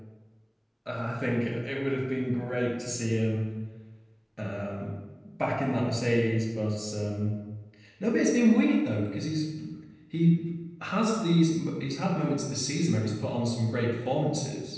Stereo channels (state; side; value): identical; both; correlation 1.00